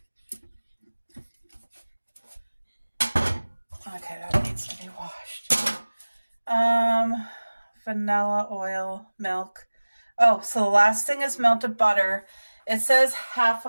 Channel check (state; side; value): inverted; both; correlation -1.00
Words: Okay, that needs to be washed. Vanilla oil, milk. Oh, so the last thing is melted butter. It says half